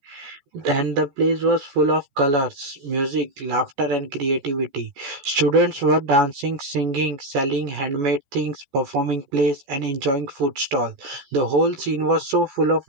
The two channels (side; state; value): left; late; 14 ms